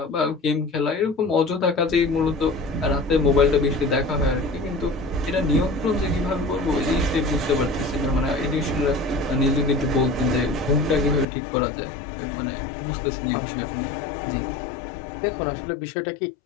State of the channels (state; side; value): drops out; right; at 11.2 s